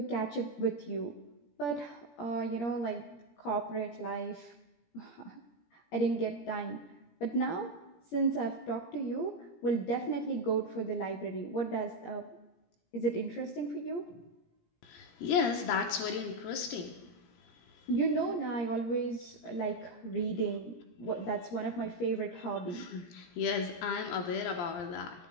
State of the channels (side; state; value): right; late; 17 ms